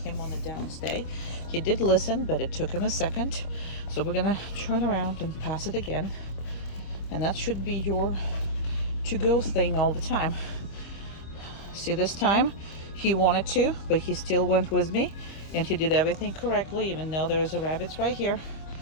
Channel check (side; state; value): right; late; 25 ms